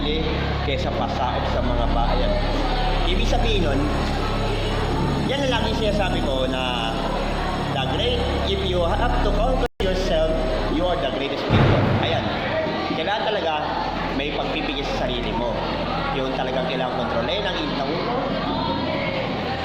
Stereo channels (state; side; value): identical; both; correlation 1.00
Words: kaysa pasaot sa mga bayan. Ibig sabihin nun, yan ang lagi sinasabi ko na if you have to conquer yourself, you are the greatest people. Ayan, kailangan talaga may pagpipigil sa sarili mo. Yung talagang kailangan kontrolin ang init ng ulo.